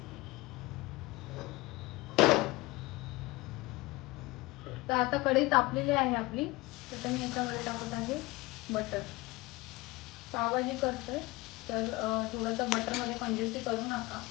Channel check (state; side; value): quieter; right; 21.1 dB